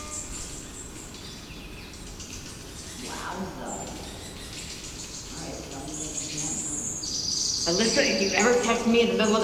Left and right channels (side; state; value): both; identical; correlation 1.00